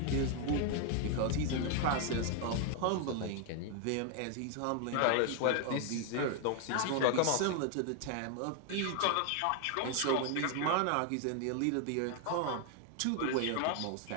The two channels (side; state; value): both; different; correlation 0.00